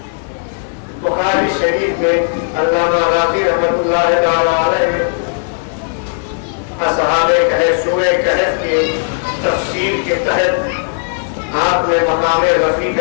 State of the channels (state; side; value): silent; right; 62 dB below the other